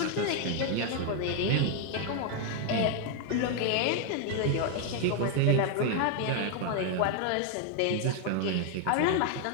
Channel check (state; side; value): different; both; correlation 0.00